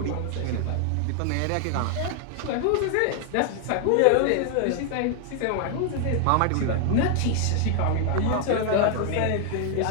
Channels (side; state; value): both; different; correlation 0.00